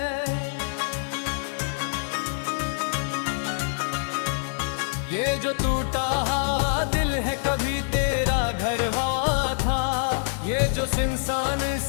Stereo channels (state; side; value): silent; right; digital silence